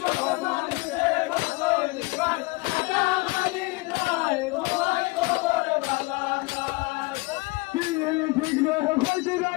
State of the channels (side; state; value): right; quieter; 24.5 dB